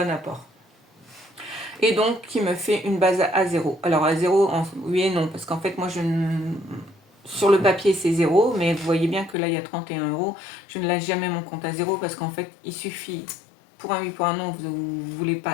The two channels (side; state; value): right; drops out; at 9.3 s